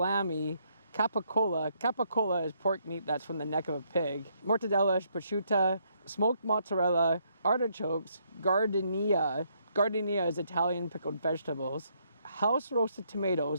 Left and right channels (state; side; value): inverted; both; correlation -0.72